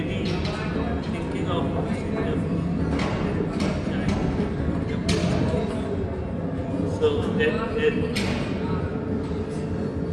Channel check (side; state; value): both; identical; correlation 1.00